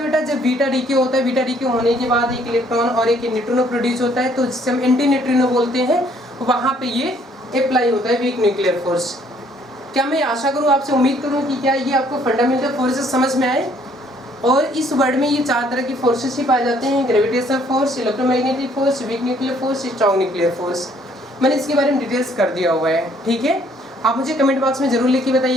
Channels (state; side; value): normal; both; correlation 0.63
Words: बेटा? जब बीटा डीके होता है। बीटा डीके होने के बाद एक इलेक्ट्रॉन और एक न्यूट्रिनो प्रोड्यूस होता है, तो जिसे हम एंटी न्यूट्रिनो बोलते हैं, वहाँ पे ये अप्लाई होता है वीक न्यूक्लियर फोर्स। क्या मैं आशा करूँ, आपसे उम्मीद करूँ कि क्या ये आपको फंडामेंटल फोर्सेस समझ में आए। और इस वर्ड में ये 4 तरह की फोर्सेस ही पाए जाते हैं: gravitational force, electromagnetic force, week nuclear force, strong nuclear force. मैंने इसके बारे में डिटेल्स कर दिया हुआ है। ठीक है, आप मुझे कमेंट बॉक्स में जरूर लिख के